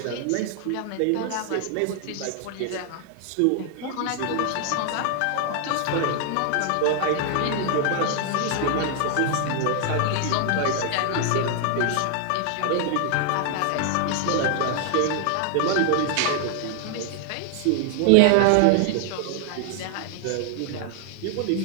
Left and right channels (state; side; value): different; both; correlation 0.00